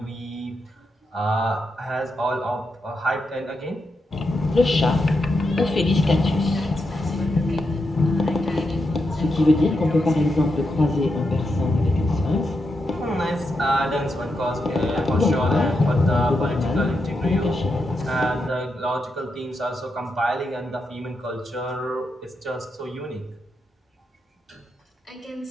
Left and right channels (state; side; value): normal; both; correlation 0.85